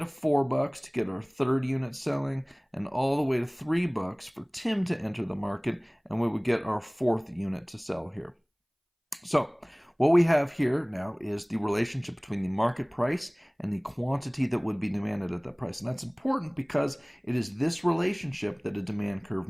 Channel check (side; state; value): both; identical; correlation 1.00